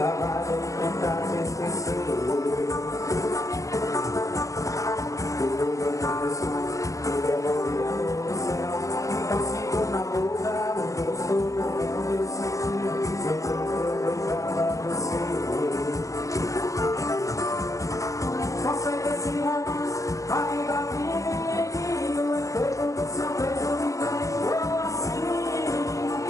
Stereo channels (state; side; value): late; right; 0.16 ms